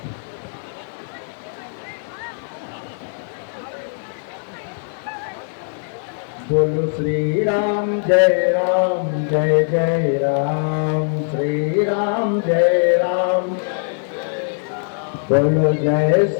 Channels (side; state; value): right; silent; digital silence